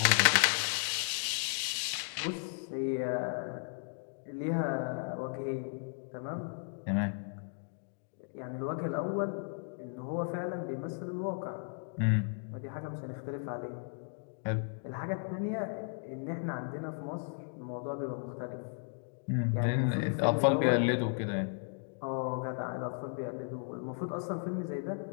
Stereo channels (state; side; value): silent; right; 54 dB below the other